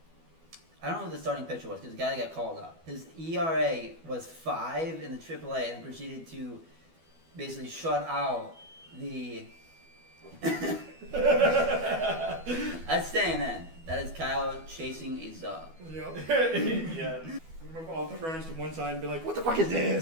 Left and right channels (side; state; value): left; late; 12 ms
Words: I don't know who the starting pitcher was because the guy that got called up. His ERA was 5 in the AAA and proceeded to basically shut out the. That's staying in. That is Kyle chasing a Zug. Yep. Yeah. Move all the runners to one side and be like, "What the fuck is